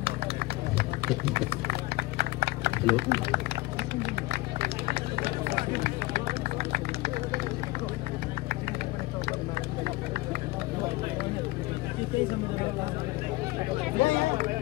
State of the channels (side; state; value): right; quieter; 20.2 dB